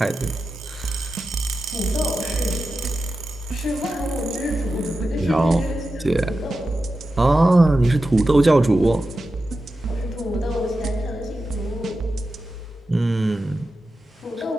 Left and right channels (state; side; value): normal; both; correlation 0.92